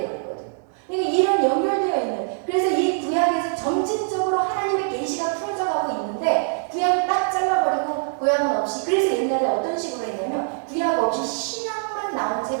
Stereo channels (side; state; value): left; silent; digital silence